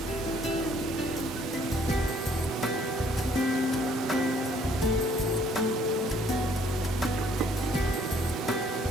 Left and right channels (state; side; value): normal; both; correlation 0.62